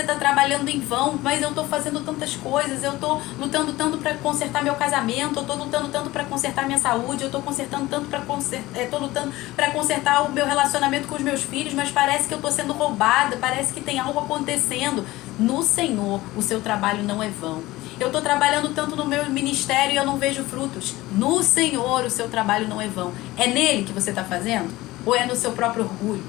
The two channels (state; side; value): quieter; right; 18.4 dB